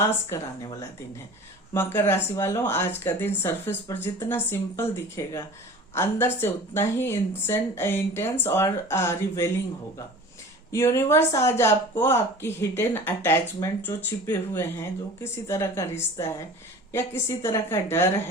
कराने वाला दिन है। मकर राशि वालों, आज का दिन सरफेस पर जितना सिंपल दिखेगा अंदर से उतना ही इंटेंस और रिवेलिंग होगा। यूनिवर्स आज आपको आपकी हिडन अटैचमेंट जो छिपे हुए हैं, जो किसी तरह का रिश्ता है या किसी तरह का डर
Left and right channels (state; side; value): normal; both; correlation 0.41